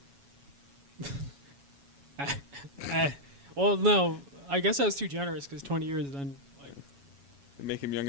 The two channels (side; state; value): left; late; 7.2 ms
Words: well, no, I guess I was too generous because 20 years then like They make him